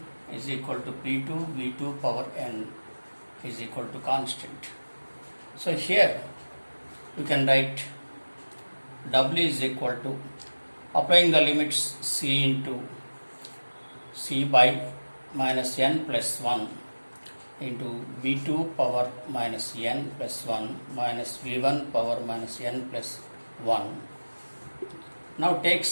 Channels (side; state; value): both; inverted; correlation -1.00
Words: is equal to P2 V2 power n is equal to constant. So here you can write W is equal to, applying the limits C into C by minus n plus 1 into V2 power minus n plus 1 minus V1 power minus n plus 1. Now take